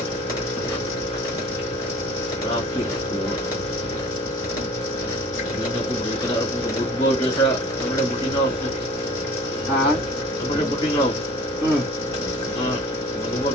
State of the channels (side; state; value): both; normal; correlation 0.46